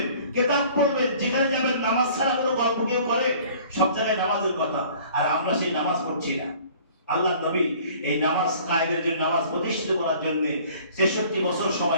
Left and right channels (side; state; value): both; inverted; correlation -0.51